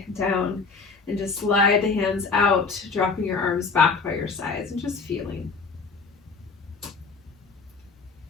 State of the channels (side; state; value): right; quieter; 4.6 dB